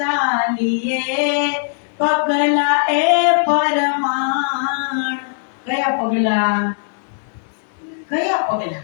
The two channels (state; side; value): silent; right; digital silence